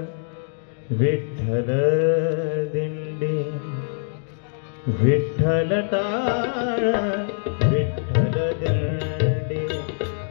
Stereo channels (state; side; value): silent; right; digital silence